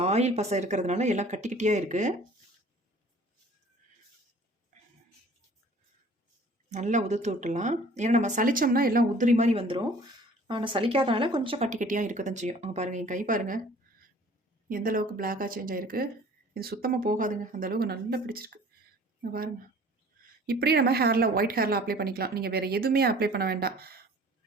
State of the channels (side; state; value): both; normal; correlation 0.50